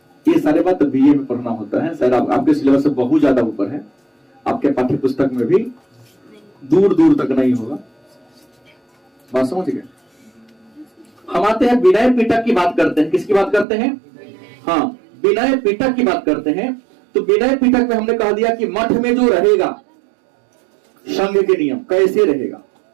ये सारे बात बीए में पढ़ना होता है। शायद आपके सिलेबस से बहुत ज्यादा ऊपर है। आपके पाठ्य पुस्तक में भी दूर दूर तक नहीं होगा। बात समझ गए? हम आते हैं विनय पीटक की बात करते हैं। किसकी बात करते हैं? हाँ, विनय पीटक की बात करते हैं। तो विनय पीटक में हमने कह दिया कि मठ में जो रहेगा, संघ के नियम कैसे रहेगा।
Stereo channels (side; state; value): left; drops out; at 13.7 s